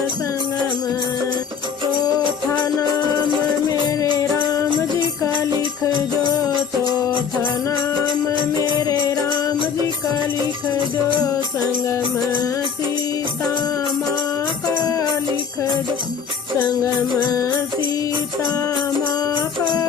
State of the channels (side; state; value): right; quieter; 6.8 dB